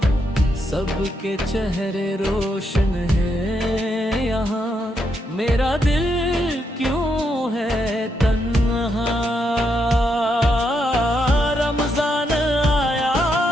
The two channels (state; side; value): normal; both; correlation 0.80